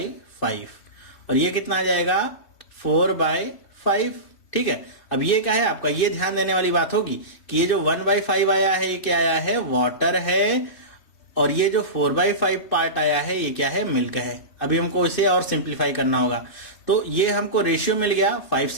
और ये कितना आ जाएगा, 4/5। ठीक है, अब ये क्या है आपका, ये ध्यान देने वाली बात होगी कि ये जो 1/5 आया है ये क्या आया है, वाटर है, और ये जो 4/5 पार्ट आया है ये क्या है, मिल्क है। अभी हमको इसे और सिंप्लीफाई करना होगा। तो ये हमको रेशियो मिल गया, 5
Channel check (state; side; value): late; right; 2.6 ms